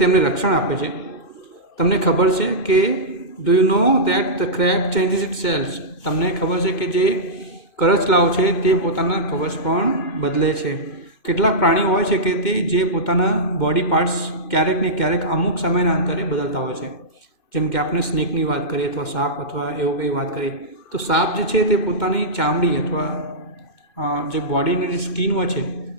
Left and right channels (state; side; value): late; right; 2.5 ms